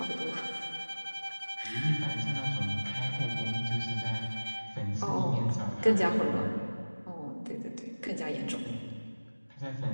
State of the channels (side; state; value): both; inverted; correlation -1.00